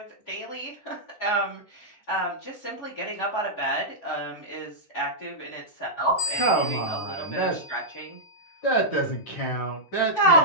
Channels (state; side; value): late; right; 11 ms